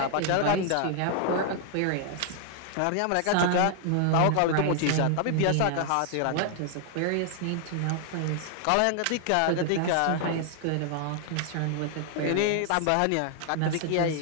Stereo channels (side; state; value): both; different; correlation 0.00